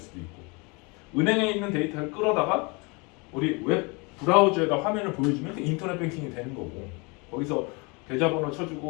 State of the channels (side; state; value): right; quieter; 29.5 dB